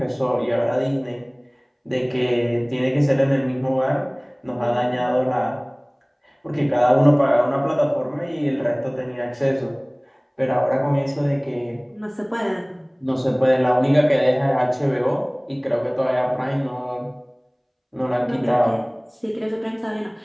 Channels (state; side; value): identical; both; correlation 1.00